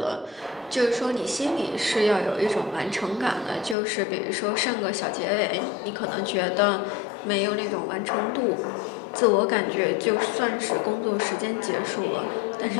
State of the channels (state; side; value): drops out; right; at 3.8 s